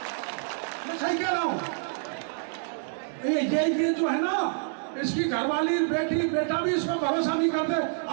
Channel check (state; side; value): silent; left; digital silence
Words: मैं सही कह रहा हूं। ये जो है ना, इसकी घरवाली बेटी बेटा भी इस पर भरोसा नहीं करते।